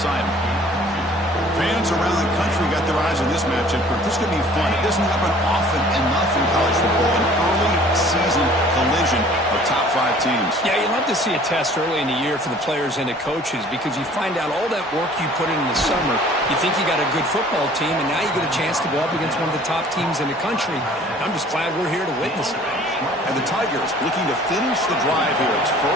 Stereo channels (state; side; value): normal; both; correlation 0.52